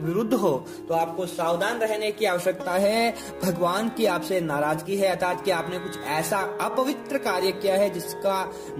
हो, तो आपको सावधान रहने की आवश्यकता है। भगवान की आपसे नाराजगी है, अर्थात कि आपने कुछ ऐसा अपवित्र कार्य किया है जिसका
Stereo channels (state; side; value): identical; both; correlation 1.00